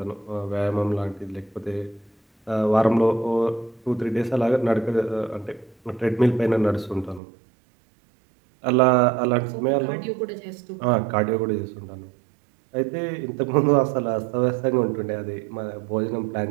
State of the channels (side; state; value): left; drops out; at 7.2 s